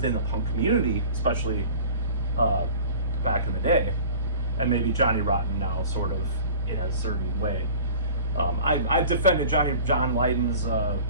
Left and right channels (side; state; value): both; inverted; correlation -0.43